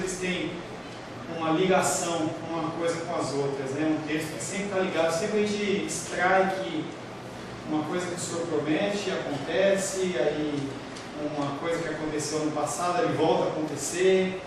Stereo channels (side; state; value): both; identical; correlation 1.00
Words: têm uma ligação uma coisa com as outras, né? Um texto que sempre está ligado, sempre a gente extrai que uma coisa que o Senhor promete acontece, aí uma coisa que aconteceu no passado ele volta a acontecer,